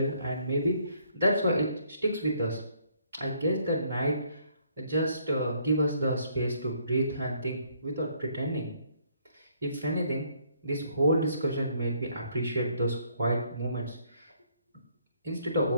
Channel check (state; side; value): inverted; both; correlation -0.66